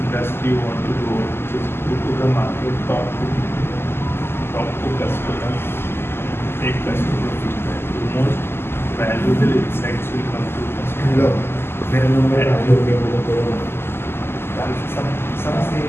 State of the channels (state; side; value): late; right; 0.12 ms